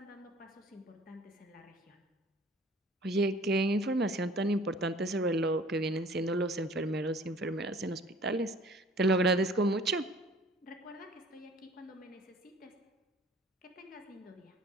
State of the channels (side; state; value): both; normal; correlation 0.51